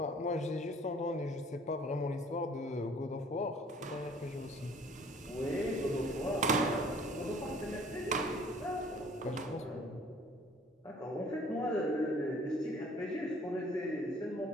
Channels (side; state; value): both; normal; correlation 0.54